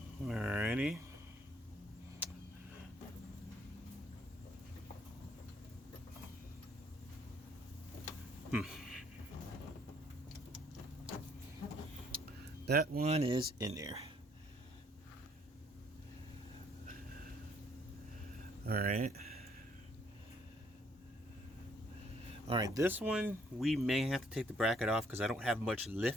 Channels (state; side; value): normal; both; correlation 0.66